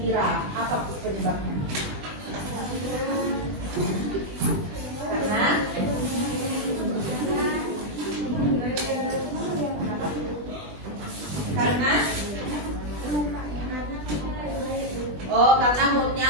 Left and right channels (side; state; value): left; late; 20 ms